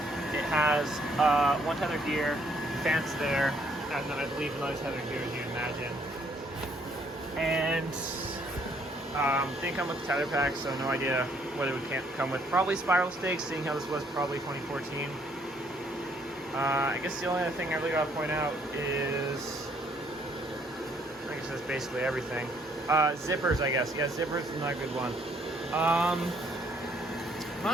it has one tether here, fence there, and then I believe another tether here, as you imagine. And didn't come with the tether pack, so no idea what it would come with. Probably spiral stakes, seeing how this was probably 2014. I guess the only other thing I really gotta point out is, I guess that's basically everything. Zippers, I guess. Yeah, zippers is not a good one. I'm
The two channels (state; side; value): normal; both; correlation 0.66